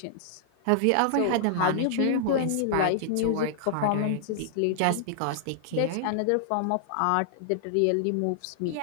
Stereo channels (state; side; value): different; both; correlation -0.01